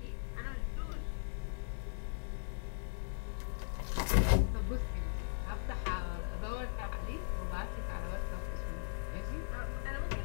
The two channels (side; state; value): right; silent; digital silence